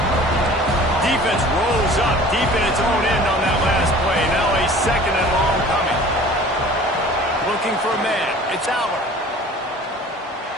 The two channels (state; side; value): normal; both; correlation 0.46